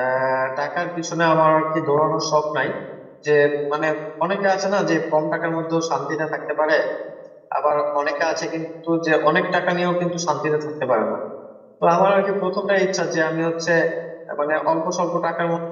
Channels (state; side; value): identical; both; correlation 1.00